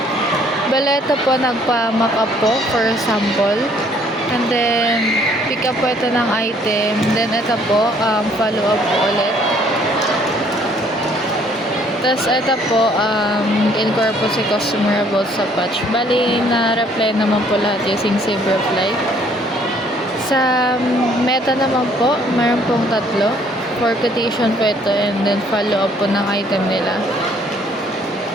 Baleta po nagpa-mock up po for sample. And then, pick up po ito ng item. Then, ito po, follow up po ulit. Tapos, ito po, inquire po si customer about sa patch. Bali, na-reply naman po lahat using Save Reply. Sa meta naman po, mayroon pong 3. For quotation po ito, and then follow up po ng item nila.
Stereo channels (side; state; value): both; normal; correlation 0.62